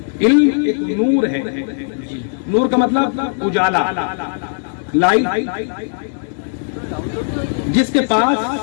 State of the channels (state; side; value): silent; right; digital silence